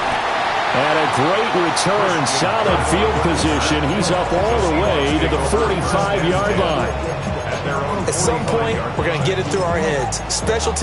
And a great return, solid field position. He's up all the way to the 45-yard line. At some point, we're going to get it through our heads. Special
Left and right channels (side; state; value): both; identical; correlation 1.00